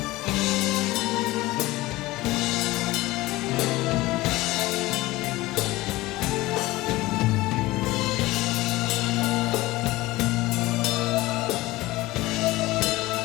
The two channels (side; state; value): right; quieter; 19.1 dB